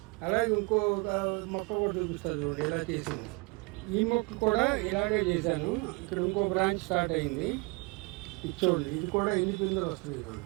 అలాగే ఇంకో మొక్క కూడా చూపిస్తుంది చూడండి, ఇలా చేసింది. ఈ మొక్క కూడా ఇలాగే చేశాను. ఇక్కడ ఇంకో బ్రాంచ్ స్టార్ట్ అయింది, ఇది చూడండి. ఇది కూడా ఎన్ని పిందెలు వస్తుంది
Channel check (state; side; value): quieter; left; 28.8 dB